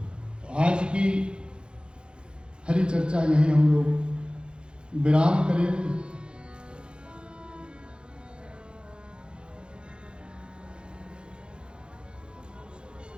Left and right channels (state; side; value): late; left; 0.053 ms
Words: तो आज की हरि चर्चा यहीं हम लोग विराम करेंगे।